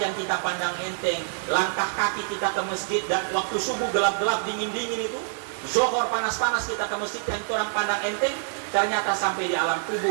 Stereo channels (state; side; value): silent; left; digital silence